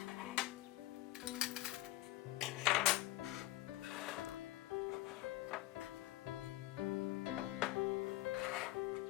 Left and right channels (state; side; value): quieter; right; 17.0 dB